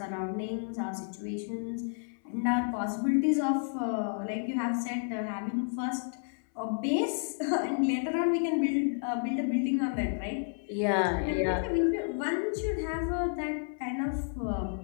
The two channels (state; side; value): silent; right; 57 dB below the other